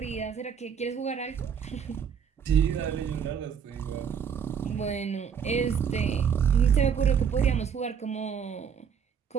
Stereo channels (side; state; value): left; quieter; 7.3 dB